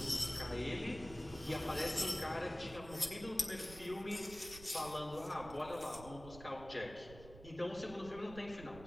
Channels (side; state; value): right; noise; rumble, 15 dB below the sound